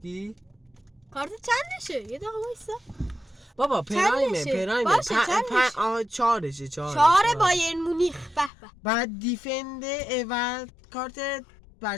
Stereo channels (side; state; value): right; drops out; at 8.5 s